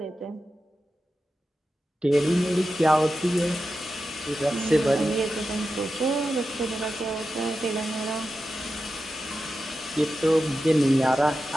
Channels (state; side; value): normal; both; correlation 0.91